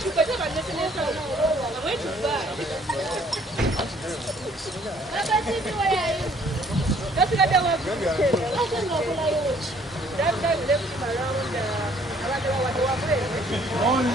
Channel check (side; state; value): both; normal; correlation 0.60